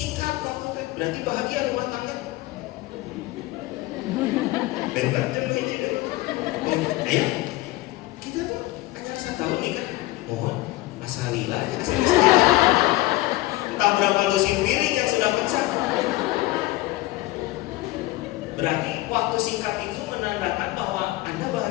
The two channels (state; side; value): quieter; right; 18.8 dB